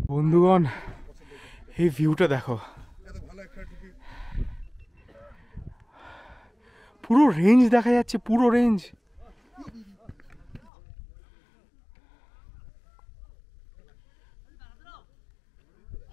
বন্ধুগণ এই ভিউটা দেখো, পুরো রেঞ্জ দেখা যাচ্ছে, পুরো রেঞ্জ।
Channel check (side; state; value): right; drops out; at 10.7 s